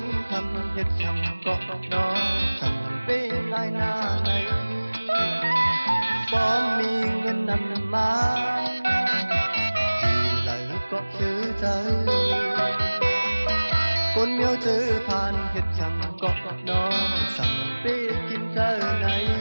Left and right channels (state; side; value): inverted; both; correlation -1.00